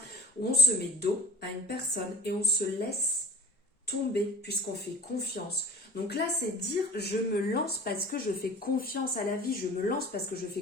où on se met dos à une personne et on se laisse tomber puisqu'on fait confiance. Donc là, c'est dire je me lance parce que je fais confiance à la vie, je me lance parce que je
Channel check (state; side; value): normal; both; correlation 0.41